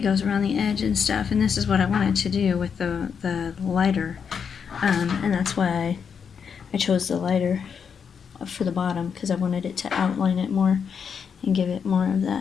goes around the edge and stuff, and this is what I wanted to do with the lighter, and that's why I chose the lighter for the bottom, because I wanted it to outline it more and give it more of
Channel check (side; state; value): right; quieter; 6.8 dB